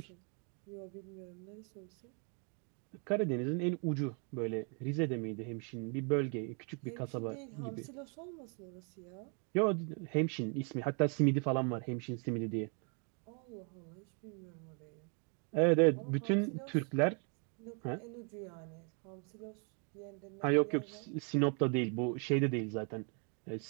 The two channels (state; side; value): quieter; left; 38.4 dB